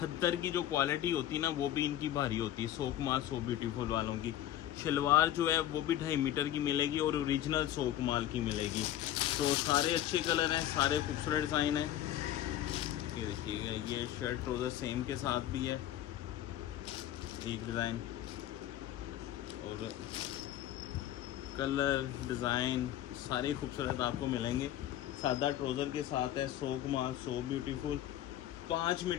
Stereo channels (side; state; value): right; quieter; 12.5 dB